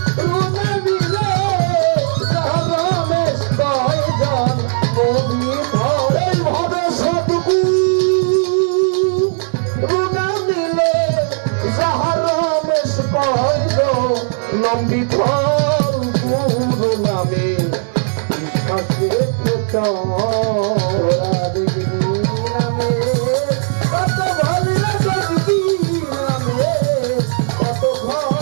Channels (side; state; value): left; silent; 65 dB below the other